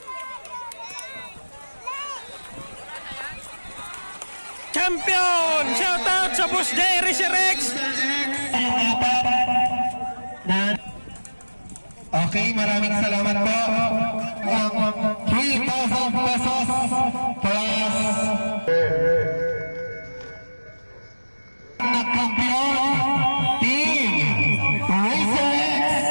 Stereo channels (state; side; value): inverted; both; correlation -1.00